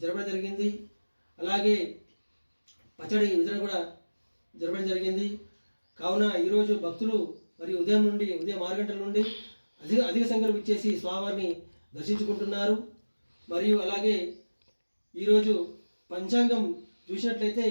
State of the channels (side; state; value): both; inverted; correlation -1.00